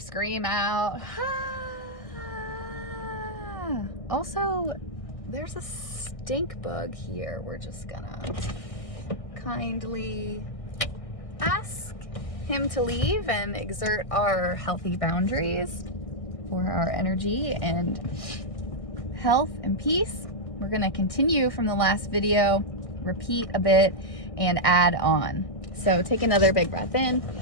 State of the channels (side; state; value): right; late; 1.6 ms